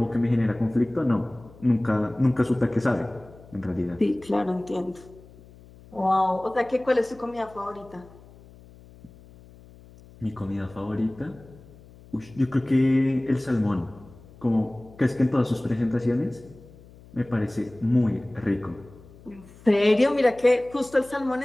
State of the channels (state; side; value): noise; left; hum, 23 dB below the sound